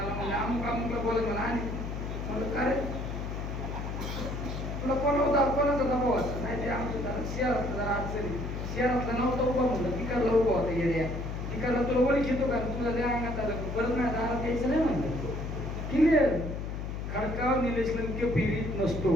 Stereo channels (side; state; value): left; noise; hum, 5 dB below the sound